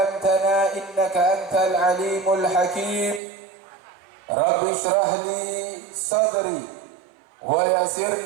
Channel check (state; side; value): drops out; left; at 3.2 s